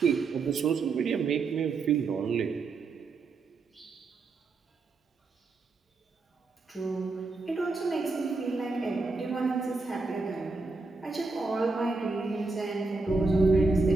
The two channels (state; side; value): quieter; left; 3.9 dB